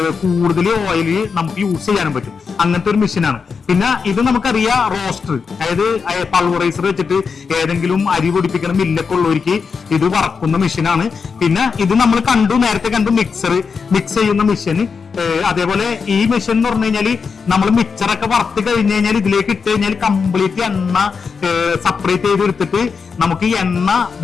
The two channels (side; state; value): right; quieter; 5.5 dB